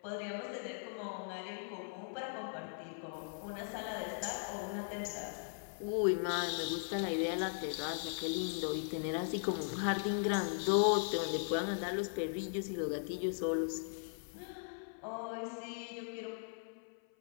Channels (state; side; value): silent; right; 52 dB below the other